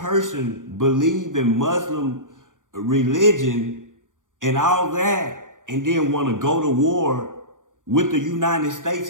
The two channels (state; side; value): late; left; 0.88 ms